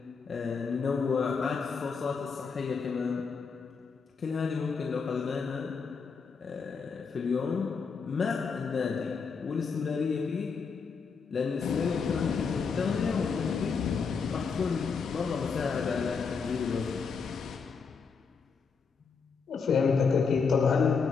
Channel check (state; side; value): quieter; right; 5.4 dB